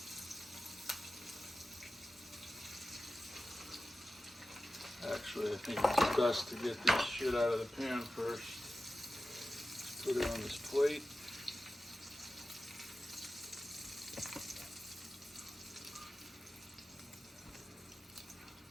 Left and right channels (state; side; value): normal; both; correlation 0.94